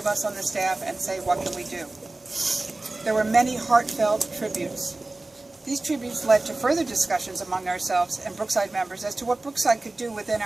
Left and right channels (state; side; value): quieter; left; 3.0 dB